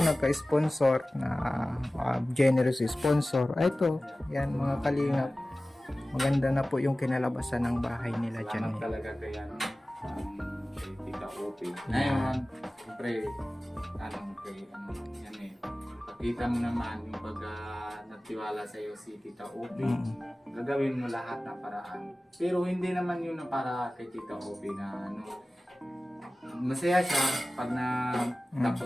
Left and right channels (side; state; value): both; normal; correlation 0.97